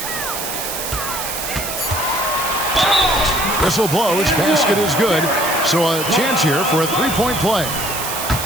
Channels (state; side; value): noise; right; hiss, 5 dB below the sound